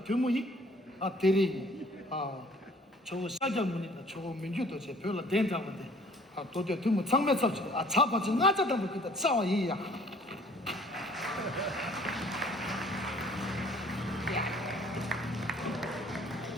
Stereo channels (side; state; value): both; normal; correlation 0.55